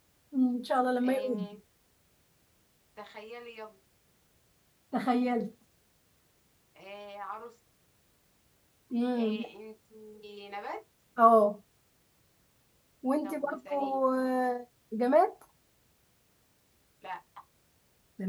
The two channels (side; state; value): both; identical; correlation 1.00